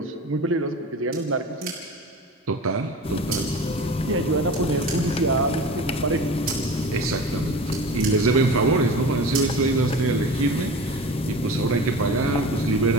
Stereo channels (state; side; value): normal; both; correlation 0.35